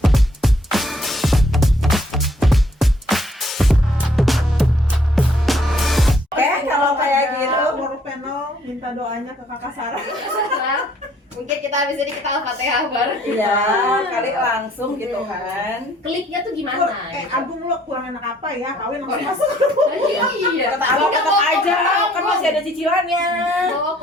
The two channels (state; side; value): normal; both; correlation 0.63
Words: Kalau kayak gitu, World Panel minta doanya ke Kakak Sarah. Mungkin kita habis ini kita Al-Fatihah bareng. Iya, kali langsung gitu kan. Kliknya tuh gimana? Agung lo kurang enak apa ya? Kawin langsung masuk. Iya. Kata Agung tetap aja, kan masih ada cicilannya. Bawa